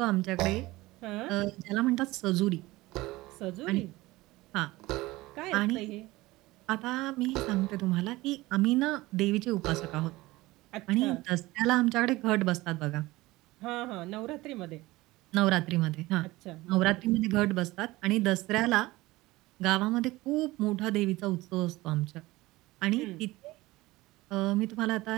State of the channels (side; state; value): left; quieter; 19.5 dB